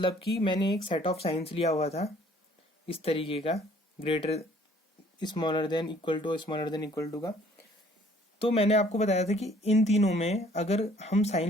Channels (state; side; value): normal; both; correlation 0.58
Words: कि मैंने एक सेट ऑफ साइंस लिया हुआ था इस तरीके का, greater smaller than equal to, smaller than equal to का। तो मैंने आपको बताया था कि इन तीनों में अगर हम